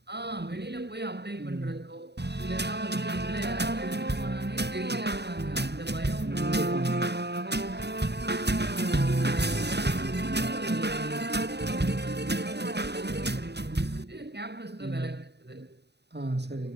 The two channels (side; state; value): left; late; 0.49 ms